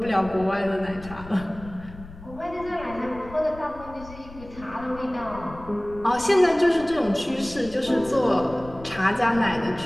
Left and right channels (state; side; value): noise; left; rumble, 17 dB below the sound